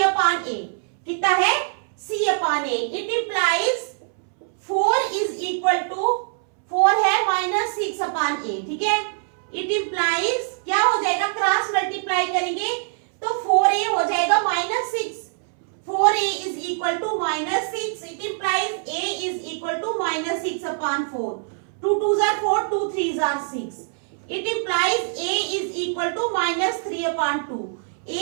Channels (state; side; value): silent; left; 63 dB below the other